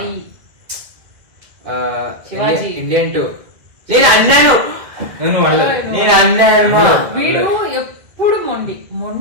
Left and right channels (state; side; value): late; left; 2.1 ms